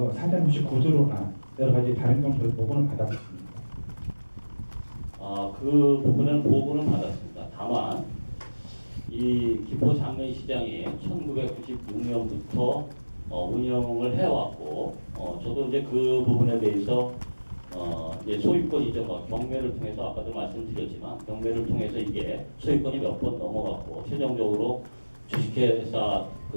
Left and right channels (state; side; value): inverted; both; correlation -1.00